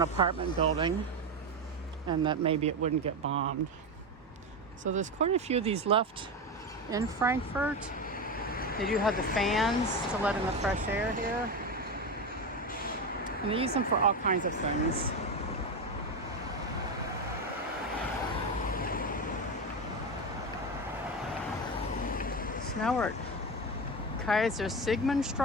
apartment building and that maybe it wouldn't get bombed. So there's quite a few of these left in Frankfurt. They do have the fans to let in the fresh air here. And they use them for all kinds of things. So now we're at Kaiser Sigmund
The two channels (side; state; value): both; normal; correlation 0.16